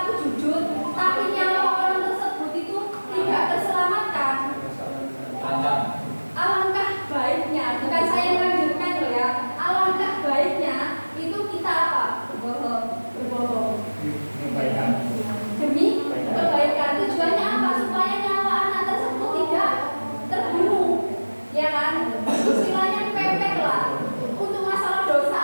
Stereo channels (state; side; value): inverted; both; correlation -1.00